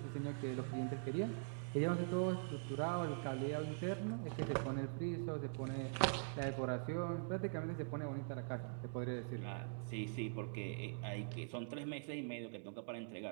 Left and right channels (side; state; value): left; silent; digital silence